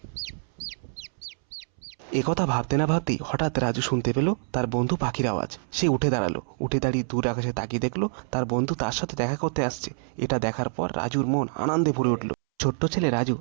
একথা ভাবতে না ভাবতেই হঠাৎ রাজু শুনতে পেল তার বন্ধু পাখির আওয়াজ। সে উঠে দাঁড়ালো। উঠে দাঁড়িয়ে দূর আকাশে তাকিয়ে দেখলো তার বন্ধু তার সাথে দেখা করতে আসছে। এটা দেখার পর রাজুর মন আনন্দে ভরে উঠল। ছোট্ট ছেলে রাজু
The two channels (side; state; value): left; silent; 61 dB below the other